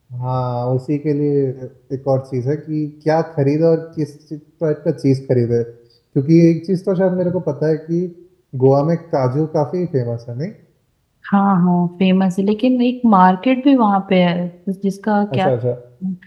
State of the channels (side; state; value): both; identical; correlation 1.00